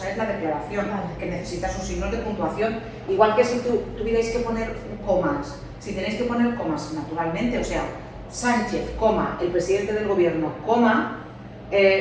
es la declaración, que necesitas un signo de puntuación. Igual que si tuvierais que poner comas. Si tenéis que poner comas, naturalmente, o sea, Sánchez, coma, el presidente del gobierno, coma,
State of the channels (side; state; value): both; identical; correlation 1.00